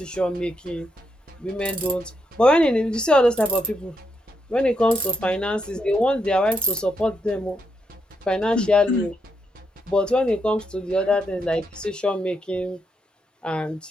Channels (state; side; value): normal; both; correlation 0.81